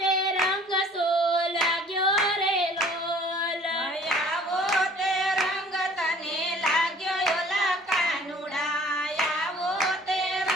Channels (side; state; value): both; normal; correlation 0.53